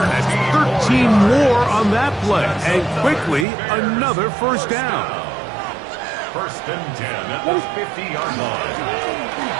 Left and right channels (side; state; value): left; drops out; at 3.5 s